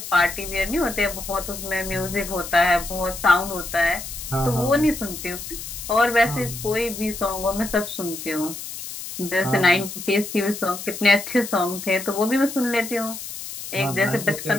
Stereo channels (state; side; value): noise; left; hiss, 9 dB below the sound